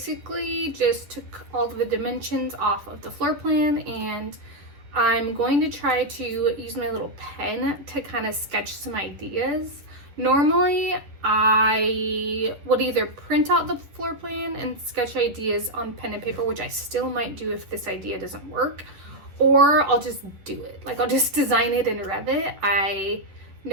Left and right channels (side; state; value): left; late; 10 ms